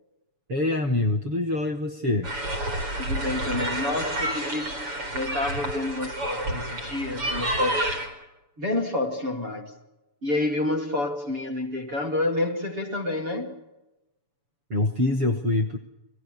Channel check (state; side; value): late; left; 7.0 ms